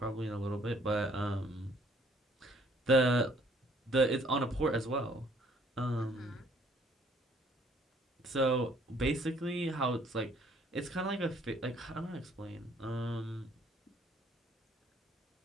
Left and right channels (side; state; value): both; normal; correlation 0.62